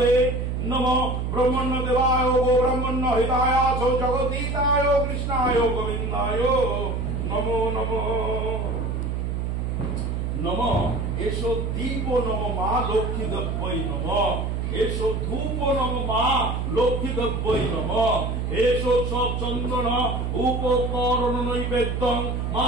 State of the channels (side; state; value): right; noise; hum, 1 dB below the sound